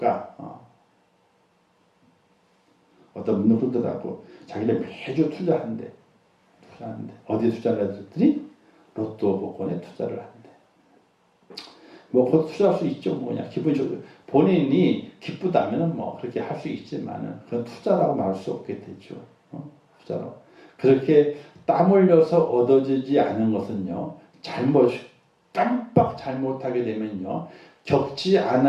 어떤 분은 그러더라고. 자기는 매주 투자한대. 어디에 투자를 했더니 로또 복권에 투자를 한대. 뭐 곧 투자할 수 있죠. 뭐냐 기본적으로 본인이 기쁘다면은 뭐 그렇게 할 수 있지만은 그건 투자라고 말할 수 없게 되죠. 투자로 그렇게 땀 흘려서 얻어지지 않은 것은요, 깜빡 잘못하게 되면요, 겪지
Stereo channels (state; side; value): identical; both; correlation 1.00